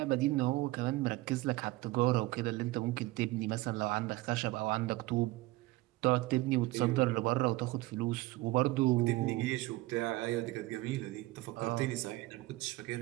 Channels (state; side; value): quieter; left; 19.6 dB